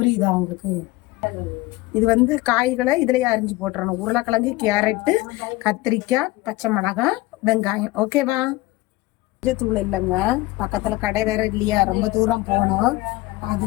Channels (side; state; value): right; quieter; 19.7 dB